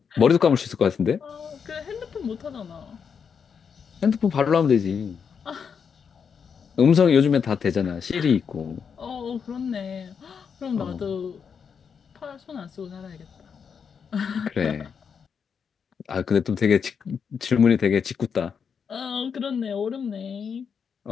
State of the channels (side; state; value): right; quieter; 6.6 dB